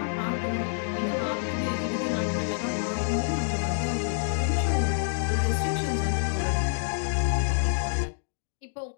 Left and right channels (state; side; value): silent; right; digital silence